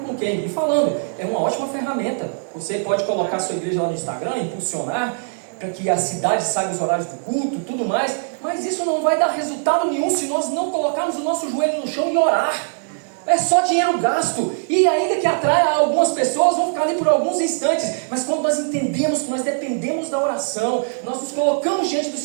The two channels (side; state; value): left; silent; digital silence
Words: quem, e falando, é uma ótima ferramenta. Você pode colocar a sua igreja lá no Instagram, impulsionar para que a cidade saiba os horários do culto e tudo mais, mas isso não vai dar resultado nenhum se nós não colocarmos o nosso joelho no chão e orar. É só dinheiro gasto, e ainda que atrai algumas pessoas, vão ficar ali por alguns instantes, mas quando nós entendemos que nós dependemos da oração, nós nos colocamos diante do